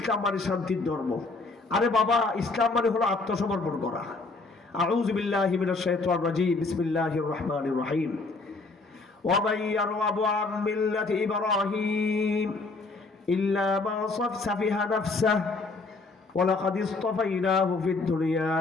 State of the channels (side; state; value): right; quieter; 3.7 dB